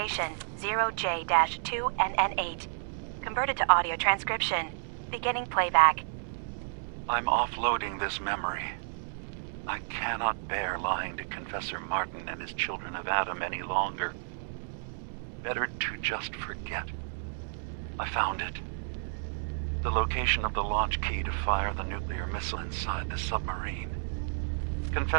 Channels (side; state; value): left; silent; digital silence